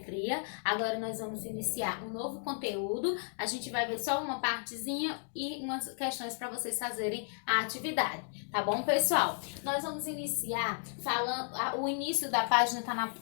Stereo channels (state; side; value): silent; right; 55 dB below the other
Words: Agora nós vamos iniciar um novo conteúdo. A gente vai ver só uma partezinha e umas questões para vocês fazerem a atividade. Tá bom, pessoal? Nós vamos iniciar falando... O início da página